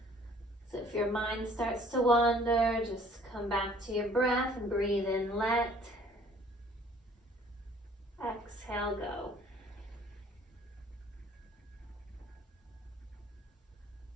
So if your mind starts to wander, just come back to your breath and breathe in, let. Exhale, go.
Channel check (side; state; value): both; normal; correlation 0.55